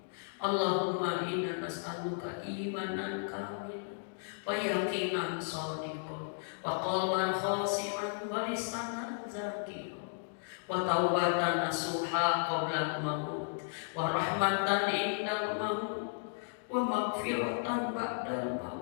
Allahumma inna nas'aluka imanan kamilan wa yaqinan shadiqan wa qalban khashi'an wa lisanan zakiran wa taubatan nasuha qabla al-maut wa rahmatan indal maut wa maghfiratan ba'dal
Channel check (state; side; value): silent; right; digital silence